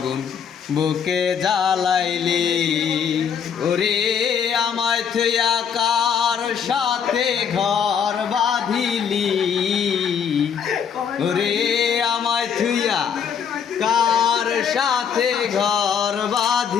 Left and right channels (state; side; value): quieter; right; 7.4 dB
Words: বুকে জ্বালাইলি, ওরে আমায় থুইয়া কার সাথে ঘর বাঁধিলি, ওরে আমায় থুইয়া কার সাথে ঘর